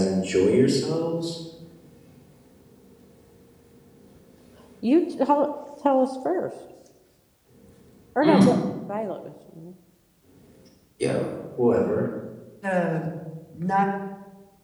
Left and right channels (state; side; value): identical; both; correlation 1.00